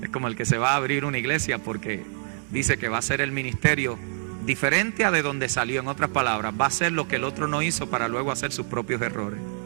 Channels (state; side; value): silent; left; digital silence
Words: Es como el que se va a abrir una iglesia porque dice que va a ser el ministerio diferente a de donde salió. En otras palabras, va a hacer lo que el otro no hizo para luego hacer sus propios errores.